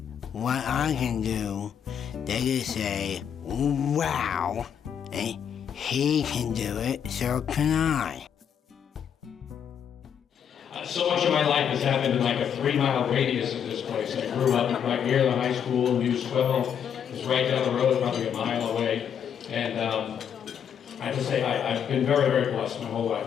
what I can do. They can say, wow, and he can do it, so can I. So much of my life has happened in like a 3-mile radius of this place. I grew up right near the high school, News 12. It was right down the road, probably a mile away. And I have to say, I've been very, very blessed my whole life.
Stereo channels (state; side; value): quieter; right; 8.3 dB